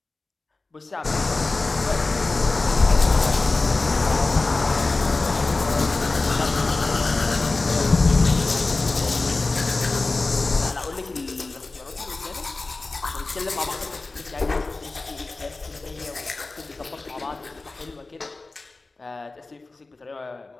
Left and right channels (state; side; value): quieter; right; 3.4 dB